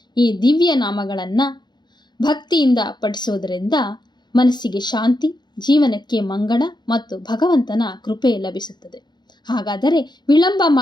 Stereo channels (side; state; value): right; late; 0.21 ms